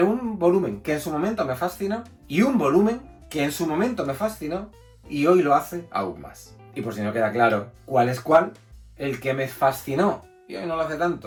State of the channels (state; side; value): identical; both; correlation 1.00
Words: un volumen que en su momento me fascinó y un volumen que en su momento me fascinó y hoy lo hace aún más. Y por si no queda claro cuál es cuál, el que me fascinó y hoy no lo hace